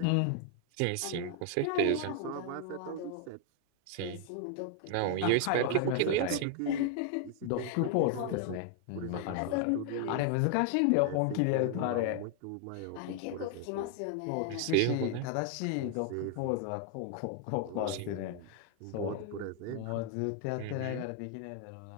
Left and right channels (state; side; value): different; both; correlation 0.00